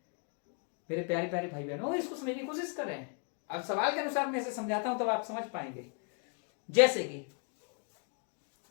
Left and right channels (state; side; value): quieter; right; 38.1 dB